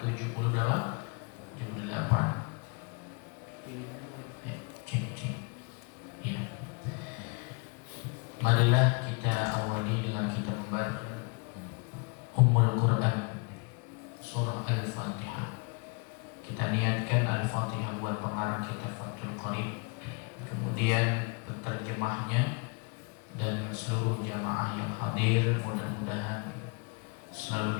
Ya. Marilah kita awali dengan kita membaca Ummul Quran, surah Al-Fatihah. Kita niatkan Al-Fatihah buat pengarang kita Fathul Qarib, kemudian penterjemahnya dan seluruh jamaah yang hadir mudah-mudahan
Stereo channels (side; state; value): right; quieter; 33.5 dB